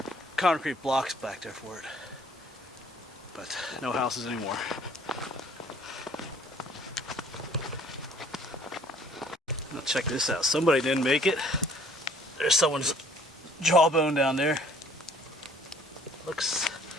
concrete blocks back there for it. But no houses anymore. Now check this out. Somebody didn't make it. There's someone's jawbone down there. Looks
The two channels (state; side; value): normal; both; correlation 0.57